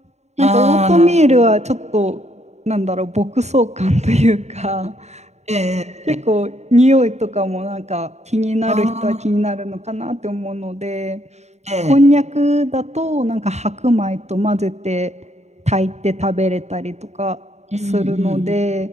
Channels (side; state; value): left; late; 0.32 ms